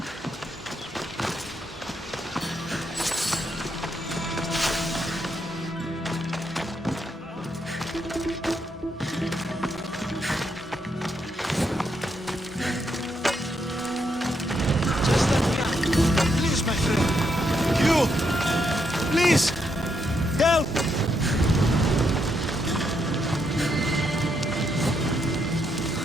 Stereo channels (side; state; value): both; normal; correlation 0.78